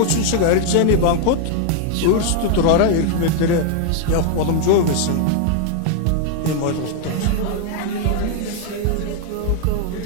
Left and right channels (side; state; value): both; different; correlation 0.00